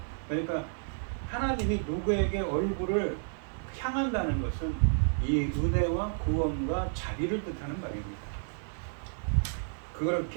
그러니까 하나님이 누구에게 얼굴을 향한다는 것은 이 은혜와 구원과 자비를 뜻하는 말입니다.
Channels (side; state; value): left; silent; 57 dB below the other